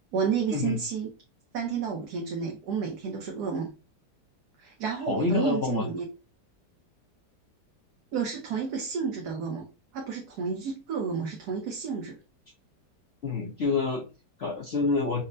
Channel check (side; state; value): both; normal; correlation 0.03